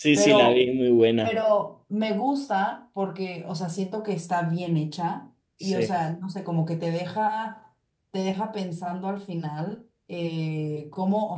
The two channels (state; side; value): identical; both; correlation 1.00